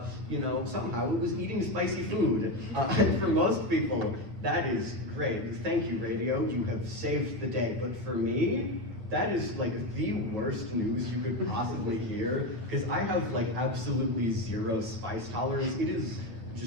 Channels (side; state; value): left; late; 8.9 ms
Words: somehow it was eating spicy food, and for most people, that is great. Thank you, radio. You have saved the day. But for me, that is the worst news you could possibly hear, because I have absolutely zero spice tolerance. It is